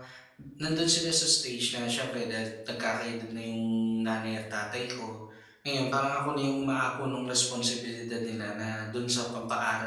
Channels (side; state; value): both; identical; correlation 1.00